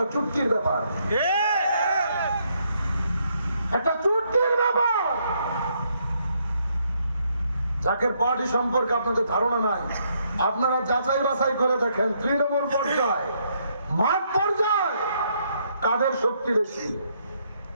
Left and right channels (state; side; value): inverted; both; correlation -0.73